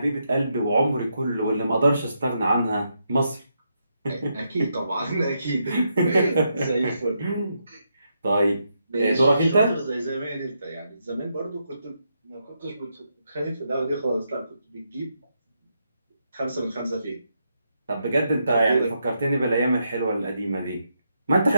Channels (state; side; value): inverted; both; correlation -0.81